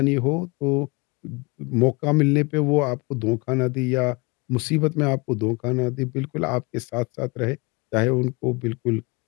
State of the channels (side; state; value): right; quieter; 27.7 dB